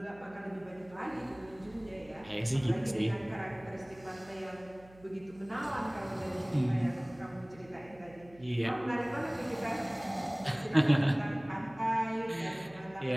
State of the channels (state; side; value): noise; right; hum, 23 dB below the sound